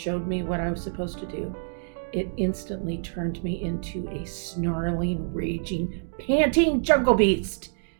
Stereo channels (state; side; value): silent; left; digital silence